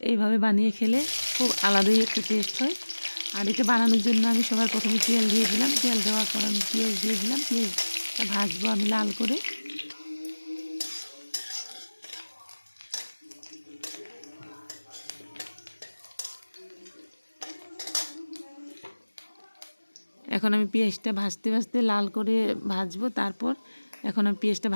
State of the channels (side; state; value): both; inverted; correlation -1.00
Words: এইভাবে বানিয়ে খেলে খুব আলাদাই একটা টেস্ট হয়। আর এটা বানানোর জন্য আমি সবার প্রথমে তেল দিয়ে দিলাম। তেল দেওয়ার পর আমি পেঁয়াজ দিয়ে দিলাম। পেঁয়াজটা ভাজবো আমি লাল করে। এখন আমি পেঁয়াজটা ভাজতে ভাজতে লাল করে ভাজবো। তারপর এখন আমি পেঁয়াজটা